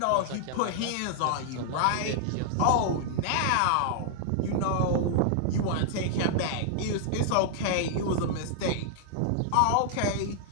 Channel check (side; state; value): both; different; correlation -0.01